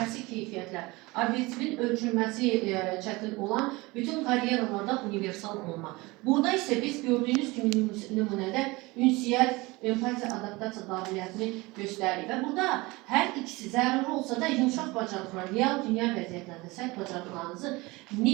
keyfiyyətlər, obyektivin ölçülməsi çətin olan bütün karyeralarda universal olma. Burada isə biz gördüyünüz kimi nümunədə ünsiyyət, empatiya, adaptasiya qabiliyyətini göstərir və burada hər ikisi zəruri olsa da yumşaq bacarıqlar, real dünya vəziyyətlərində sərt bacarıqlarınızı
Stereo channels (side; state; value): left; quieter; 22.8 dB